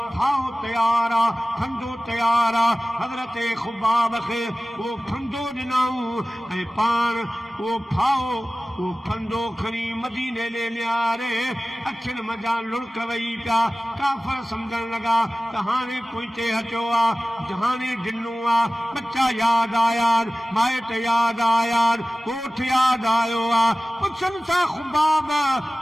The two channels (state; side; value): normal; both; correlation 0.97